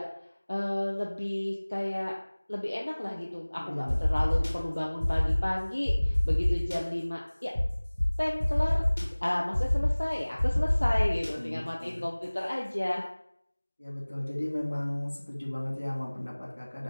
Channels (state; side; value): inverted; both; correlation -1.00